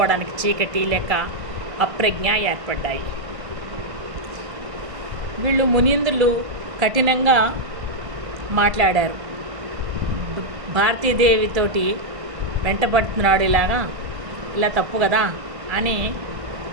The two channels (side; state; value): left; late; 1.5 ms